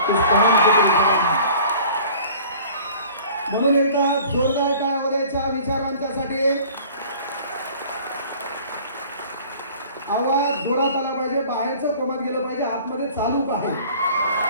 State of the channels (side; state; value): both; inverted; correlation -0.48